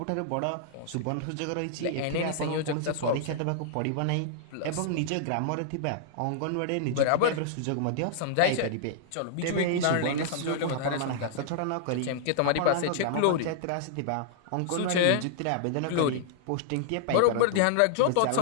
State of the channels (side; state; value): both; different; correlation -0.01